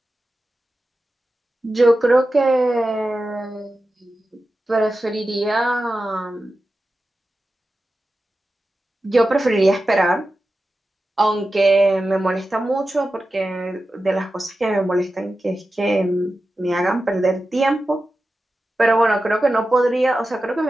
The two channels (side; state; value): both; normal; correlation 0.93